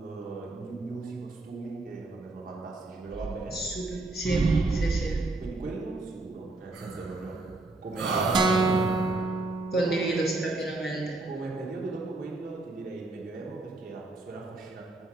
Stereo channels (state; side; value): quieter; left; 3.0 dB